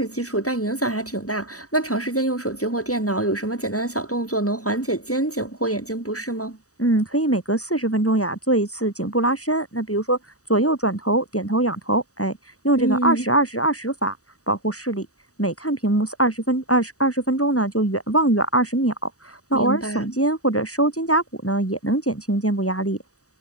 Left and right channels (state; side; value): late; right; 0.66 ms